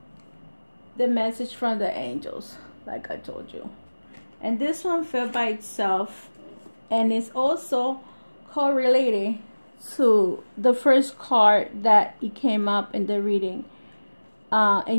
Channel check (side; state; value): both; inverted; correlation -1.00